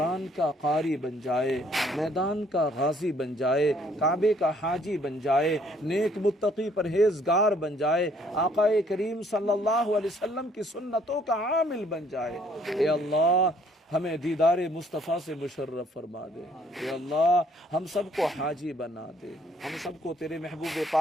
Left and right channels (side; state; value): both; normal; correlation 0.63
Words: کا قاری بن جائے، میدان کا غازی بن جائے، کعبے کا حاجی بن جائے، نیک متقی پرہیزگار بن جائے، آقا کریم صلی اللہ علیہ وسلم کی سنتوں کا عامل بن جائے۔ اے اللہ ہمیں دیدار مصطفیٰ سے مشرف فرما دے۔ اے اللہ ہم سب کو حاجی بنا دے، ہم سب کو تیرے محبوب